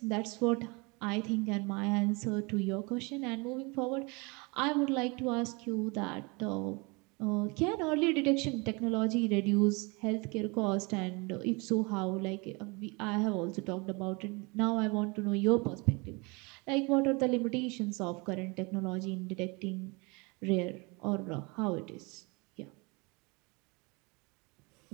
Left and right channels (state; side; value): quieter; left; 28.3 dB